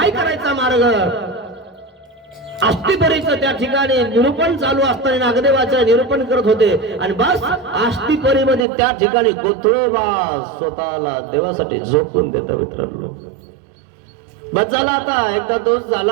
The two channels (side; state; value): left; drops out; at 8.7 s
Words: करायचा मार्ग? आस्तिपरीचं त्या ठिकाणी निरूपण चालू असताना नागदेवाचं निरूपण करत होते. आणि बस आस्तिपरीमध्ये त्या ठिकाणी कोथळवास स्वतःला देवासाठी झोकून देता मित्रांनो. बस झाला, आता एकदा दोष